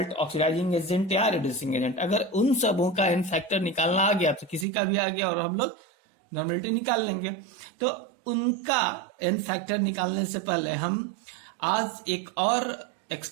oxidizing agent या रिड्यूसिंग एजेंट। अगर उन सबों का एन फैक्टर निकालना आ गया तो किसी का भी आ गया और हम लोग नॉर्मेलिटी निकाल लेंगे। तो उनका एन फैक्टर निकालने से पहले हम आज एक और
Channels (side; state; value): left; drops out; at 4.7 s